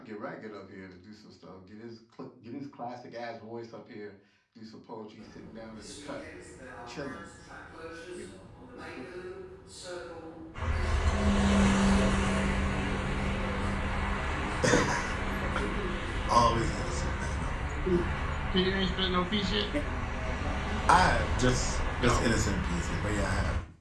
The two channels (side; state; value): both; identical; correlation 1.00